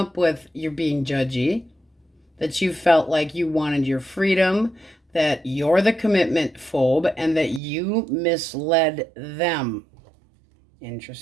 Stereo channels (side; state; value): left; drops out; at 7.6 s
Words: with, you're being judgy. That you felt like you wanted your freedom. That you're the commitment phobe and that you misled them.